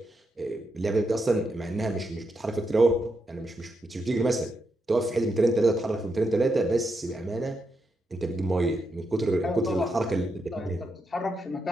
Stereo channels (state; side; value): normal; both; correlation 0.83